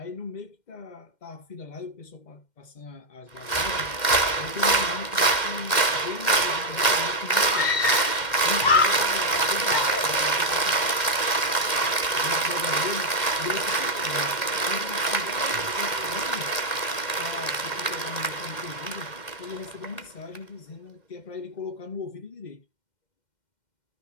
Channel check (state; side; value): late; right; 2.1 ms